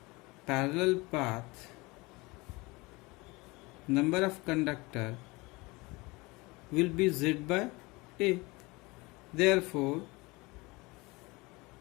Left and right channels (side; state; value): right; quieter; 24.0 dB